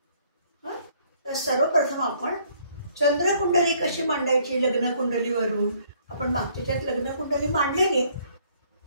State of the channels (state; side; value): inverted; both; correlation -0.63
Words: तर सर्वप्रथम आपण चंद्रकुंडली कशी मांडायची लग्नकुंडलीवरून आपण मागच्याच्यात लग्नकुंडली मांडलेली,